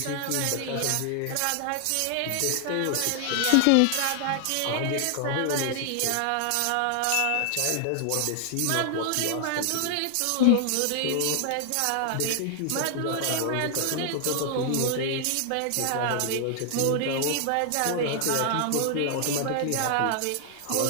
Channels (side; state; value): both; different; correlation 0.00